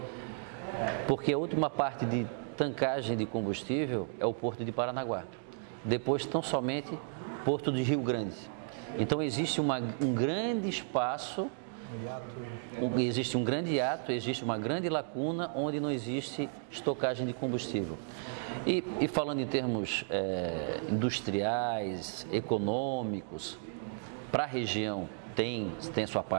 a última parte de tancagem de combustível é o Porto de Paranaguá. Depois, tão somente, Porto de Rio Grande. Então, existe um grande espaço, existe um grande hiato, existe uma grande lacuna onde não existe estocagem de combustível. E falando em termos industriais, econômicos, para a região tem sua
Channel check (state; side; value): silent; left; digital silence